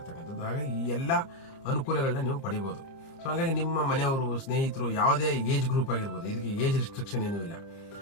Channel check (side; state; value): right; late; 30 ms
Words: ಹಾಗಾಗಿ ಈ ಎಲ್ಲ ಅನುಕೂಲಗಳನ್ನ ನೀವು ಪಡಿಬಹುದು. ಸೊ ಹಾಗಾಗಿ ನಿಮ್ಮ ಮನೆಯವರು, ಸ್ನೇಹಿತರು, ಯಾವುದೇ ಏಜ್ ಗ್ರೂಪ್ ಆಗಿರ್ಬೋದು, ಇದಕ್ಕೆ ಏಜ್ ರಿಸ್ಟ್ರಿಕ್ಷನ್ ಏನೂ ಇಲ್ಲ